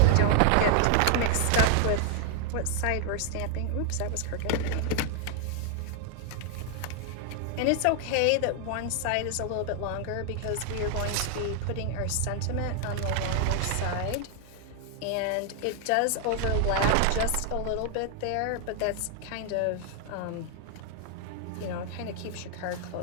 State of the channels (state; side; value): different; both; correlation 0.00